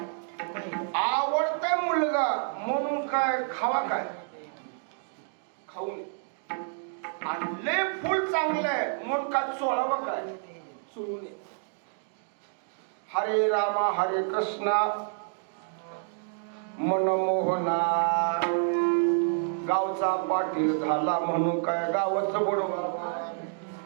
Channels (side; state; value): left; silent; digital silence